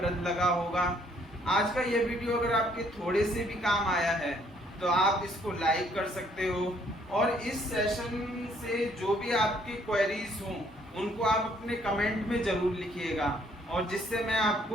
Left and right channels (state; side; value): normal; both; correlation 0.65